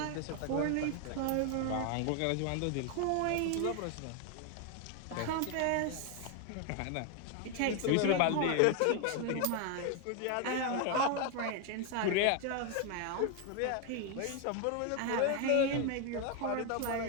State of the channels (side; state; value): both; different; correlation 0.01